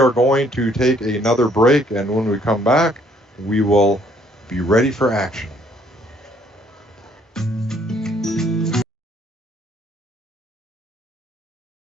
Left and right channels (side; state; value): both; normal; correlation 0.64